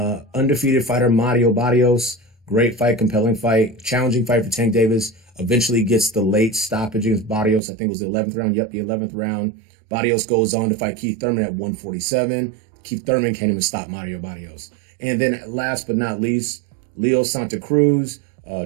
Undefeated fighter Mario Barrios, great fight, compelling fight, challenging fight for Tank Davis. Eventually gets the late stoppage against Barrios. I think it was the 11th round. Yep, the 11th round. Barrios goes on to fight Keith Thurman at 147. Keith Thurman can't even stop Mario Barrios. And then last but not least, Leo Santa Cruz,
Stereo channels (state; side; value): drops out; left; at 7.6 s